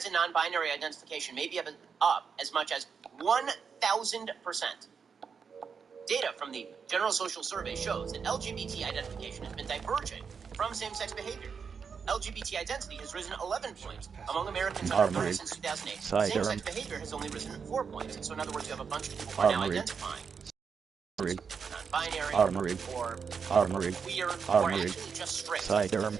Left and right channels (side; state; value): left; quieter; 6.1 dB